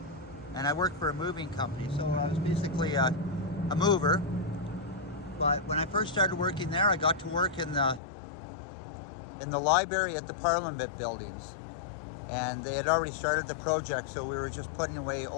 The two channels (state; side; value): drops out; right; at 8.0 s